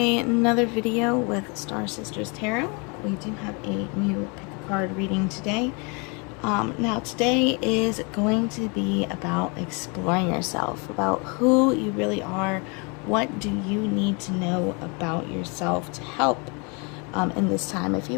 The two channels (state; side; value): quieter; right; 32.4 dB